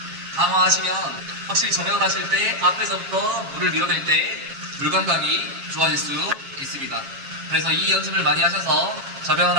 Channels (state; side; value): late; left; 7.3 ms